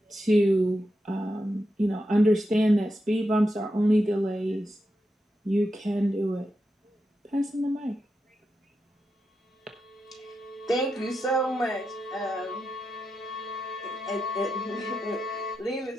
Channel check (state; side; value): normal; both; correlation 0.87